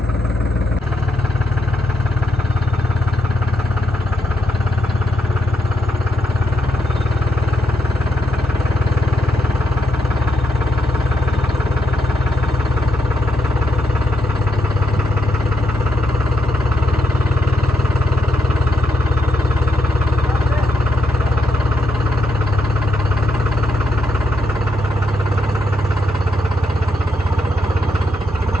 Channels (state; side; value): normal; both; correlation 0.79